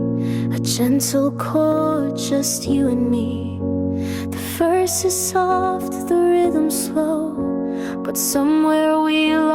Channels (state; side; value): identical; both; correlation 1.00